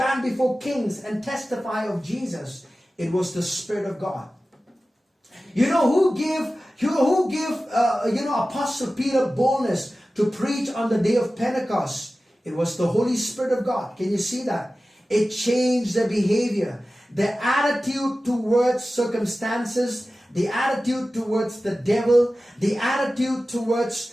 before kings and testify of Jesus? It was the Spirit of God. Who gave Apostle Peter boldness to preach on the day of Pentecost? It was the Holy Spirit of God. Can you see that? It changed their behavior, their attitude towards circumstances, the attitude towards the devil, the attitude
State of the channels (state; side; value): normal; both; correlation 0.95